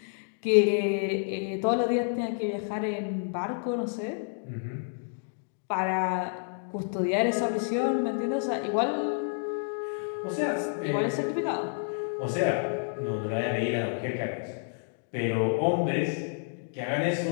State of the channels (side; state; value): right; silent; digital silence